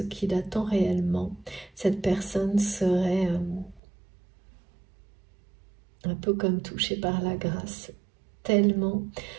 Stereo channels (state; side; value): drops out; left; at 3.8 s